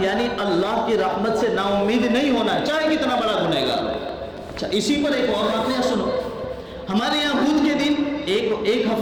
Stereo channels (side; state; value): both; identical; correlation 1.00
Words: یعنی اللہ کی رحمت سے نا امید نہیں ہونا چاہے کتنا بڑا گنہگار ہو۔ اچھا اسی پر ایک اور واقعہ سنو، ہمارے یہاں بدھ کے دن ایک